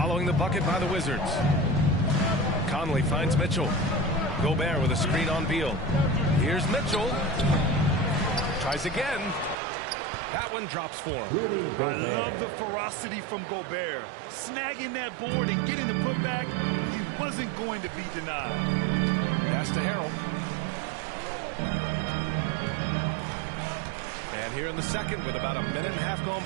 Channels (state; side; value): drops out; left; at 9.6 s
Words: the bucket by the Wizards. Conley finds Mitchell. Gobert with a screen on Beal. Here's Mitchell. Tries again. That one drops for him. I love the ferocity from Gobert. Snagging that board and getting the putback. He wasn't going to be denied. Pass to Harrell. And here in the second with about a minute and a half gone